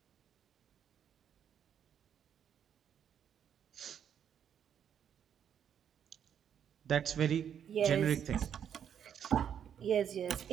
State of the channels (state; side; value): quieter; left; 8.7 dB